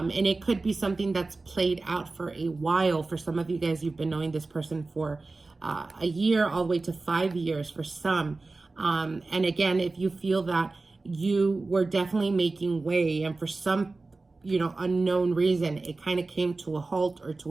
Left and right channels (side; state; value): left; quieter; 3.5 dB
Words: it could be something that's played out for a while. For some of you guys, you've been knowing this person for a year, all the way to 5 years for some. And again, if you feel that you were definitely making way, and for some, unknown reason, it kind of came to a halt or